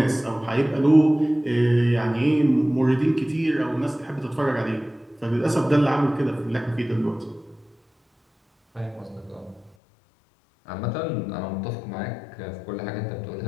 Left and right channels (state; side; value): drops out; right; at 9.8 s